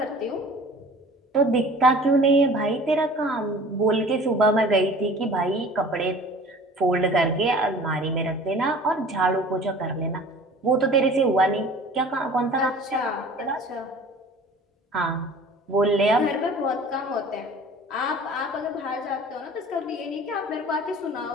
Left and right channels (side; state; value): both; normal; correlation 0.45